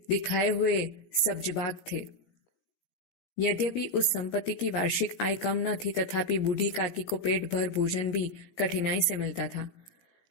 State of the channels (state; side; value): late; right; 17 ms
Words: दिखाए हुए सब्जबाग थे। यद्यपि उस संपत्ति की वार्षिक आय कम न थी, तथापि बूढ़ी काकी को पेट भर भोजन भी कठिनाई से मिलता था।